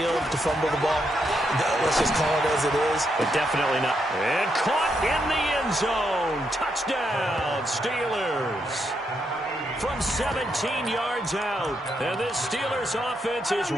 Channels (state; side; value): normal; both; correlation 0.80